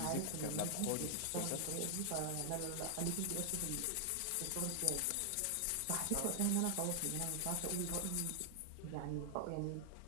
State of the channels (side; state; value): both; different; correlation 0.00